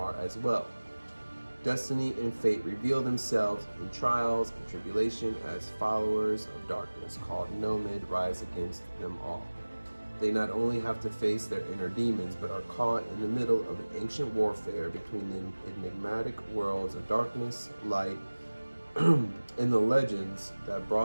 as well. Destiny and fate reveal themselves in trials and tribulation as followers of darkness called Nomad rise against them all. They not only have to face their inner demons, but are caught in the middle of an ancient warfare between the enigmatic worlds of darkness, light, and the legends that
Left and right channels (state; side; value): inverted; both; correlation -1.00